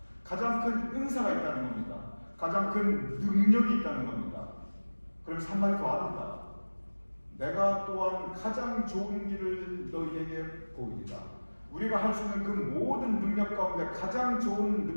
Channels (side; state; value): both; inverted; correlation -1.00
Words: 가장 큰 은사가 있다는 겁니다. 가장 큰 능력이 있다는 겁니다. 그럼 한마디 더 합니다. 내가 또한 가장 좋은 길을 너희에게 보이리라. 우리가 할 수 있는 그 모든 능력 가운데 가장 좋은